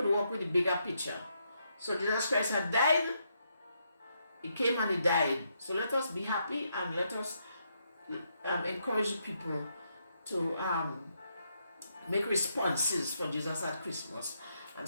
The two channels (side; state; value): both; inverted; correlation -0.79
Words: work with the bigger picture. So Jesus Christ had died. He came and he died. So let us be happy and let us encourage the people to make responses for Jesus at Christmas and